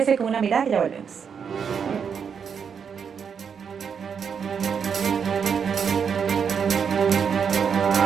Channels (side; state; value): left; quieter; 6.8 dB